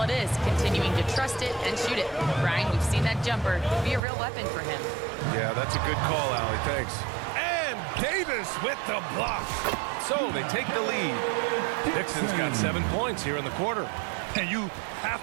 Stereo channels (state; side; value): drops out; left; at 4.0 s